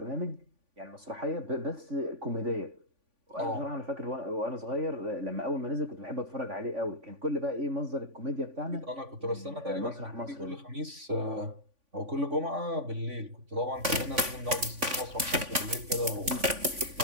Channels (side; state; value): left; late; 3.5 ms